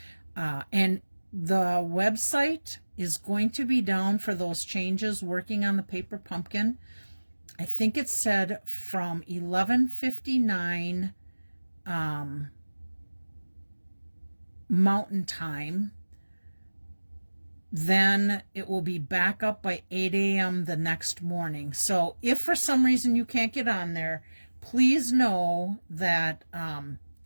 And the website is going to be down for those changes working on the Paper Pumpkin. I think it said from 11:59 Mountain Time. Then it will be back up by 8 a.m. the next morning. So if for some reason you can't get on there, please know that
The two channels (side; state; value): both; inverted; correlation -1.00